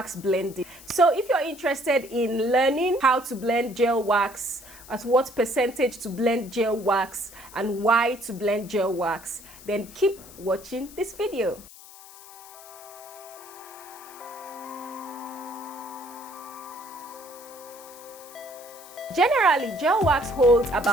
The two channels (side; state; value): left; noise; hiss, 19 dB below the sound